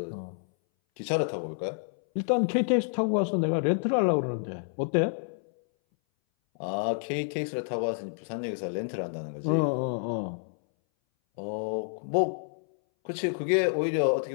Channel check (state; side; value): silent; right; 59 dB below the other